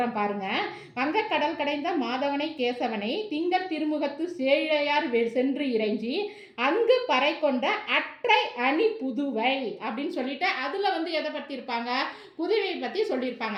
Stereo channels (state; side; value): identical; both; correlation 1.00